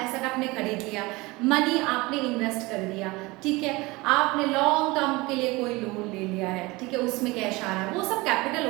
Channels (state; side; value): quieter; left; 22.7 dB